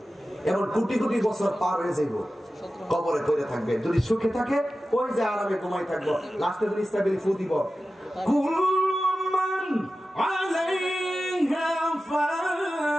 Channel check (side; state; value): both; normal; correlation 0.94